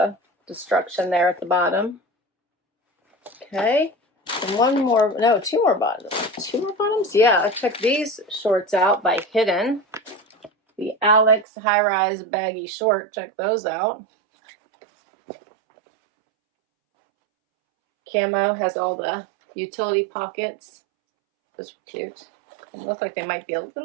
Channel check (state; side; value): drops out; left; at 11.5 s